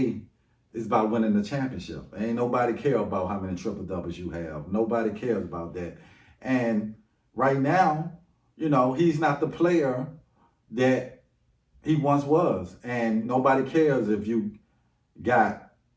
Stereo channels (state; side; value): identical; both; correlation 1.00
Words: It's about winning the championship. Ain't nobody care about how many triple doubles you have. Nobody cares about that. And right now, he's not the player that he once was. And nobody cares if you got